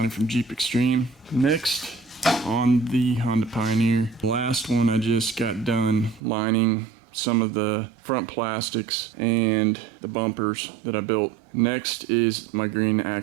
from Jeep Extreme. Next on the Honda Pioneer. The last one I just got done lining some of the front plastics and the bumpers that I built. Next is my green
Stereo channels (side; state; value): left; drops out; at 6.2 s